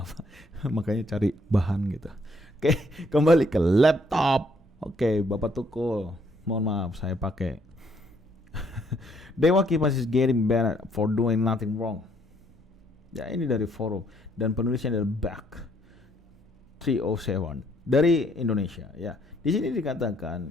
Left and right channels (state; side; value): normal; both; correlation 0.68